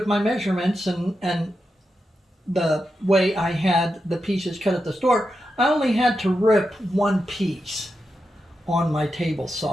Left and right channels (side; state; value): both; normal; correlation 0.88